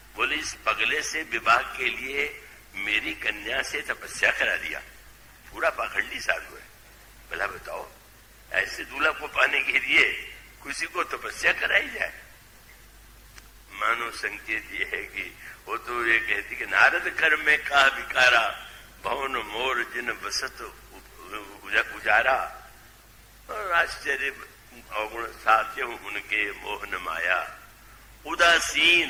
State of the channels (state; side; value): identical; both; correlation 1.00